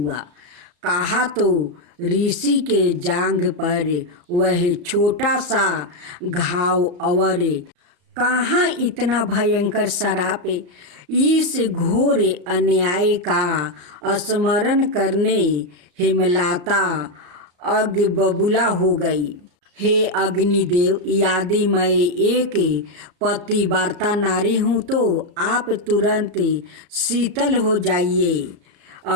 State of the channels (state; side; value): late; left; 34 ms